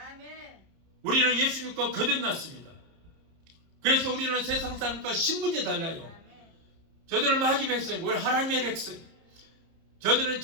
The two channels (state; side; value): late; left; 30 ms